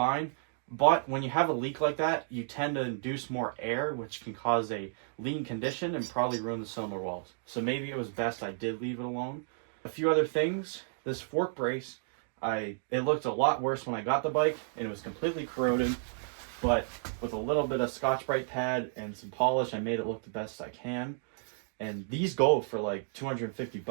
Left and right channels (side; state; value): left; silent; digital silence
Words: But when you have a leak like that, you tend to induce more air, which can cause a lean condition and probably ruin the cylinder walls. So maybe it was best I did leave it alone. A few other things. This fork brace, it looked a lot worse when I got the bike, and it was completely corroded. But with a little bit of Scotch-Brite pad and some polish, I made it look the best I can. And these go for like 250